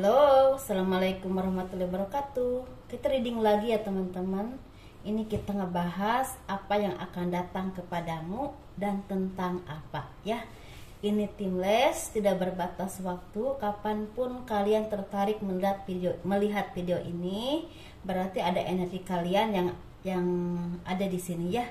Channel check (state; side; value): identical; both; correlation 1.00